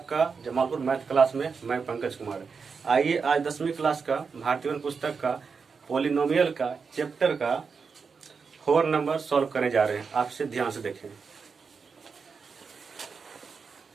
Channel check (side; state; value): left; quieter; 5.4 dB